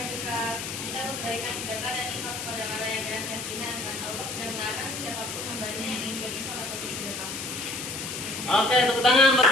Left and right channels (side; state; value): left; noise; hiss, 6 dB below the sound